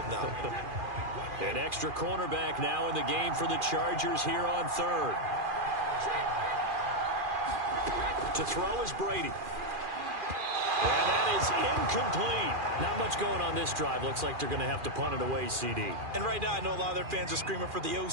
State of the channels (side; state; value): left; late; 2.4 ms